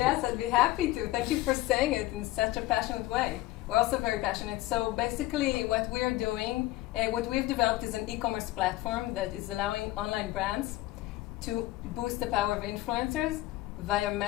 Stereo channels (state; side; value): quieter; right; 17.5 dB